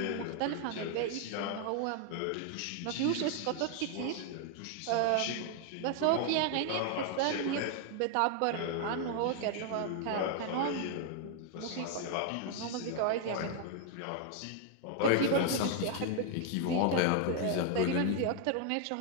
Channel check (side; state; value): both; different; correlation 0.00